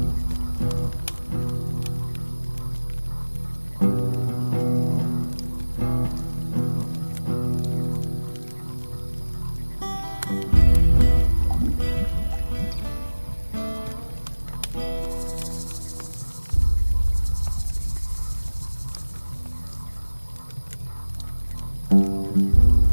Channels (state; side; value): inverted; both; correlation -1.00